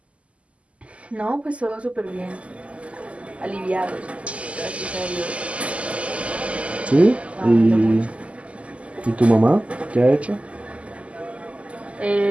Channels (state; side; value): late; left; 0.061 ms